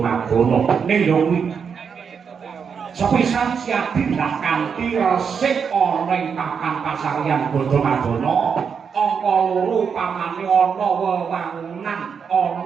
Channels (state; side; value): quieter; left; 6.5 dB